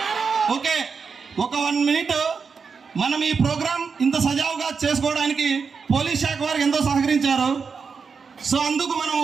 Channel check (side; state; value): left; quieter; 5.5 dB